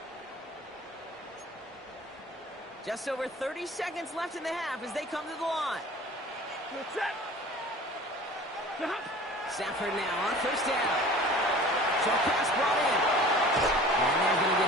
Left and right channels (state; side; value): normal; both; correlation 0.44